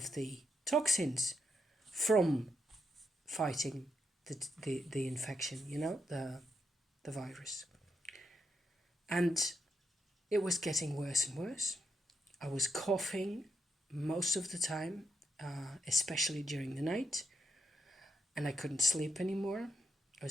the toxins from fighting the infection, the virus. And it was getting worse and worse. I was coughing most of the time, especially during the night, and I couldn't sleep anymore. I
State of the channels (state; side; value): normal; both; correlation 0.80